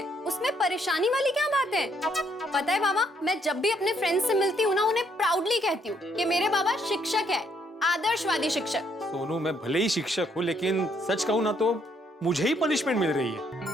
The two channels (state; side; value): normal; both; correlation 0.70